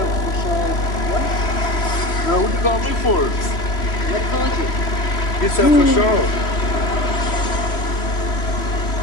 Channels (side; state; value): right; late; 3.1 ms